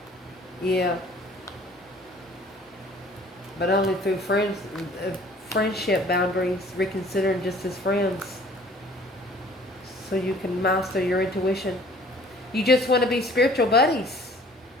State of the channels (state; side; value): normal; both; correlation 0.53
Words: Yeah. But only through friendship boundaries, reconsidering just as friends. So you can master your intuition. You just want to be spiritual buddies.